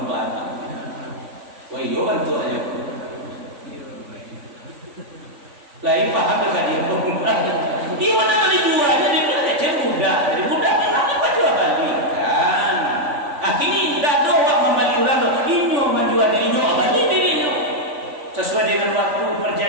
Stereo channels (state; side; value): late; left; 3.5 ms